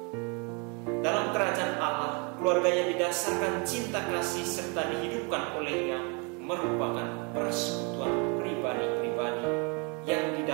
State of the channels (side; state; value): left; quieter; 33.2 dB